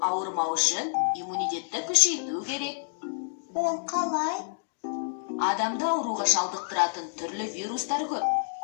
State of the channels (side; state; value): right; silent; digital silence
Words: ауырмау үшін иммунитетті күшейту керек. Ол қалай? Адамда ауруға шалдықтыратын түрлі вирустар көп.